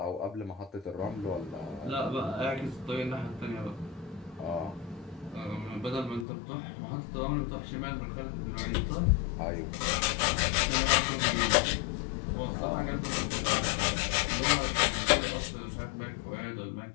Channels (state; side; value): drops out; right; at 6.2 s